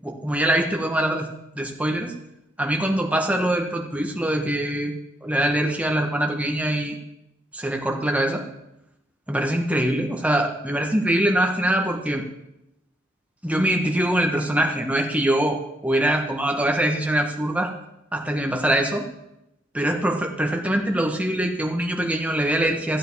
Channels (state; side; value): normal; both; correlation 0.76